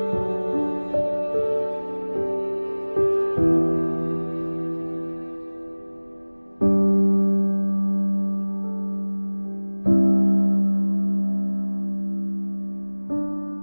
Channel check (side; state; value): both; inverted; correlation -1.00